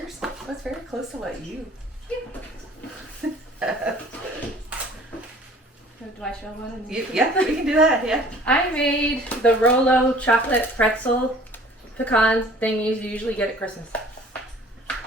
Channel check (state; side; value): normal; both; correlation 0.50